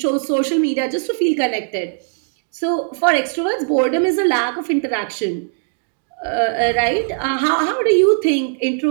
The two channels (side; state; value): left; silent; digital silence